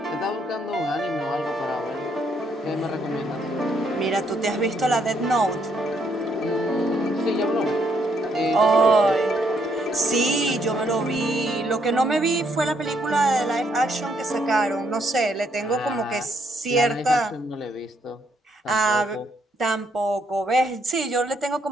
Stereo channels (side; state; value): both; normal; correlation 0.72